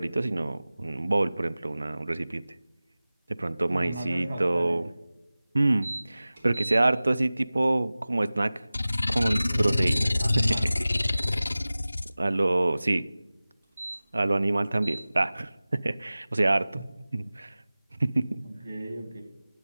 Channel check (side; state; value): both; inverted; correlation -0.97